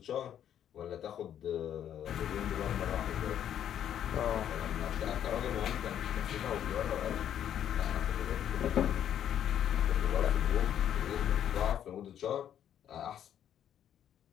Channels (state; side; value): quieter; right; 10.0 dB